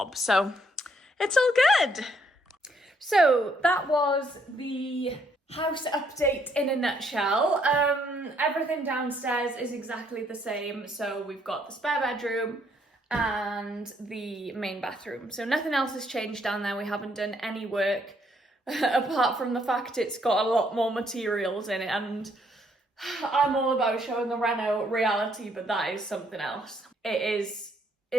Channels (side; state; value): both; normal; correlation 0.70